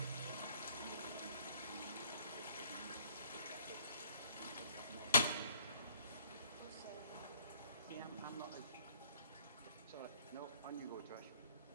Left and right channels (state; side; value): inverted; both; correlation -0.62